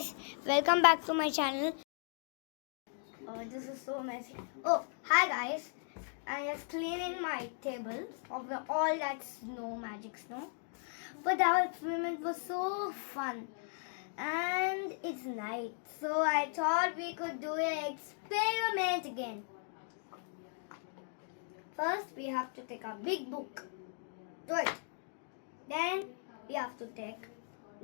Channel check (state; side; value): silent; right; 53 dB below the other